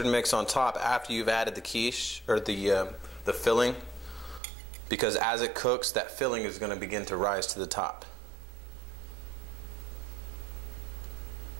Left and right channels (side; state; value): left; drops out; at 4.4 s